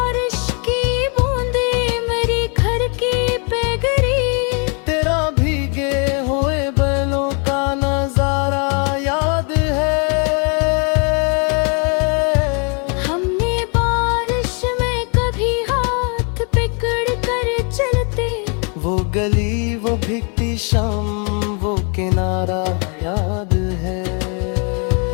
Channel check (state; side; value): quieter; right; 37.1 dB